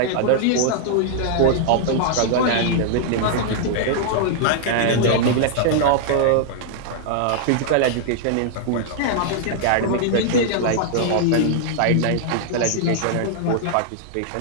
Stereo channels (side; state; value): both; different; correlation 0.00